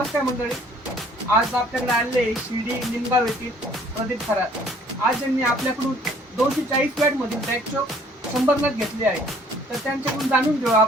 मंडळी, आज आपल्याकडे आलेले शिर्डी निमगाव येथील प्रदीप खरात. आज यांनी आपल्याकडून 240 वॅट मधील बॅकचॉक 100 नग घेतले आहे. तर त्यांच्याकडून जाणून घेऊ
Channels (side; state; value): both; normal; correlation 0.58